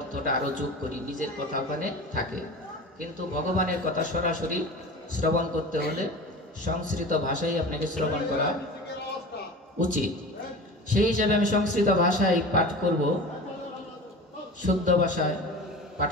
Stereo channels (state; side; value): normal; both; correlation 0.34